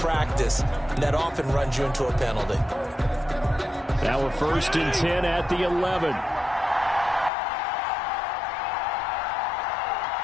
And that often runs you into a penalty. Now we're 1st and 10 at the 11.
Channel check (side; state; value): right; drops out; at 7.3 s